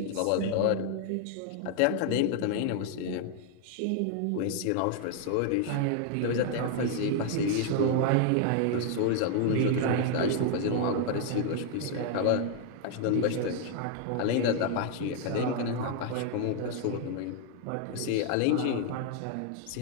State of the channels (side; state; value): both; different; correlation 0.00